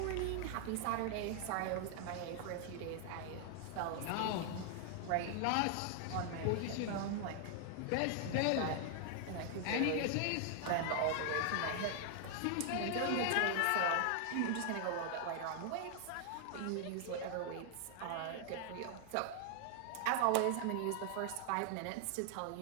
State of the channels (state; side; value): different; both; correlation 0.00